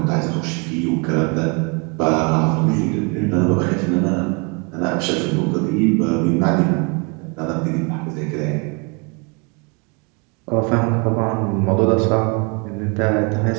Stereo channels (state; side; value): quieter; left; 32.2 dB